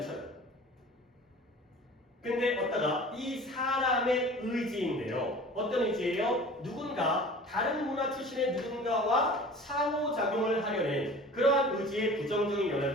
근데 어따가 이 사람의 의지인데요. 어떤 의지예요? 누군가 다른 문화 출신의 누군가와 상호작용을 하려는 그러한 의지에 부정적인 영향을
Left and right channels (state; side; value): normal; both; correlation 0.42